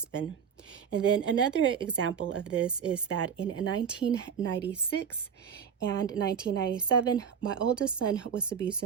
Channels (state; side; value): quieter; left; 7.4 dB